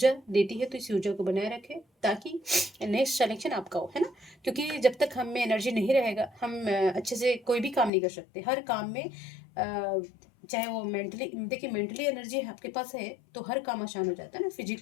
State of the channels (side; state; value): right; drops out; at 7.9 s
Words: देती है। तो इस ऊर्जा को बनाए रखें ताकि नेक्स्ट सिलेक्शन आपका हो, है ना। क्योंकि जब तक हम में एनर्जी नहीं रहेगा हम अच्छे से कोई भी काम नहीं कर सकते। हर काम में चाहे वो मेंटली, देखिए मेंटली एनर्जी आपके पास है तो हर काम आसान हो जाता है ना।